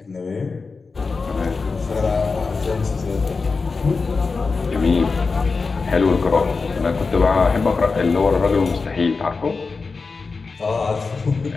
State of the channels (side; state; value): right; quieter; 4.4 dB